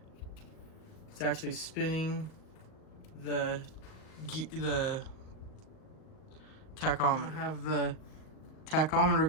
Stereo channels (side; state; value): right; late; 38 ms